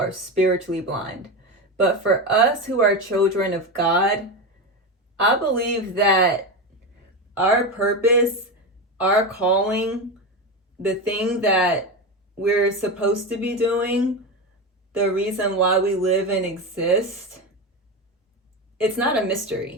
spiritually blind. But for us who are children of God, I believe that our purpose, our calling, the thing that we're supposed to be doing, the reason why we live and exist, it's not a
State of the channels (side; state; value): both; normal; correlation 0.18